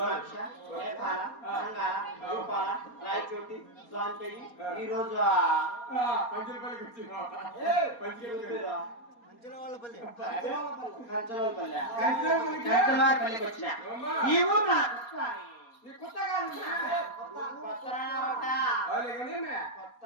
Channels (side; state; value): right; late; 4.3 ms